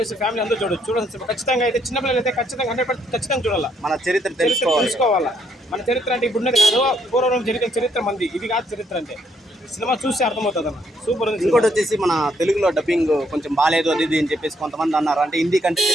ఫ్యామిలీ అందరూ చూడొచ్చు. ఖచ్చితంగా అయితే చిన్నపిల్లలు అయితే ఖచ్చితంగా 100% ఖచ్చితంగా చూడాలి. మన చరిత్ర తెలుసుకోవాలా. మన చరిత్ర అంటే ఇప్పుడు ఉన్నది కాదు, పూర్వం జరిగిన చరిత్ర మంది, ఇది కాదు చరిత్ర అంటే. సినిమా చూస్తే అర్థమవుతుంది అన్న, సూపర్ ఉంది. ఇంకోటి వచ్చేసి మన తెలుగులో డబ్బింగ్ కొంచెం బాగాలేదు అది అని చెప్పేసి కొంతమంది అన్నారు. అంటే హిందీ కంటే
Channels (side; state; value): both; normal; correlation 0.72